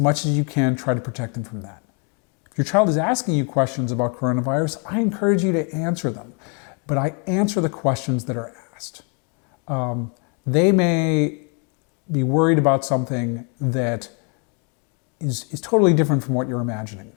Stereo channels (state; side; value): quieter; right; 37.4 dB